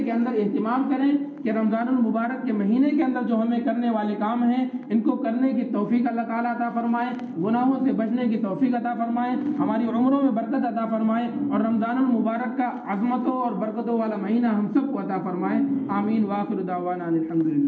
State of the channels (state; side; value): identical; both; correlation 1.00